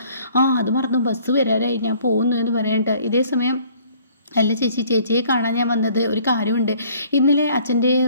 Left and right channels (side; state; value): both; inverted; correlation -0.57